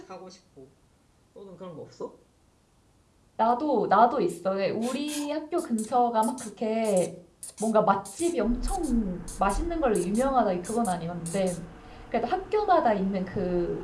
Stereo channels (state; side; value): identical; both; correlation 1.00